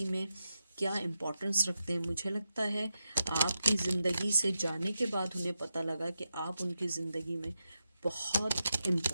में क्या इम्पोर्टेंस रखते हैं। मुझे लगता है आपकी ज़िंदगी से जाने के बाद उन्हें पता लगा कि आप उनकी ज़िंदगी में बहुत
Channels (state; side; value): inverted; both; correlation -0.88